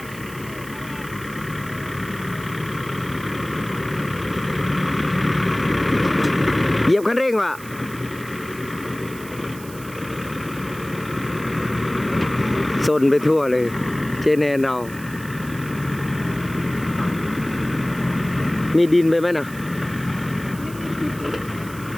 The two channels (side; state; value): right; noise; hiss, 17 dB below the sound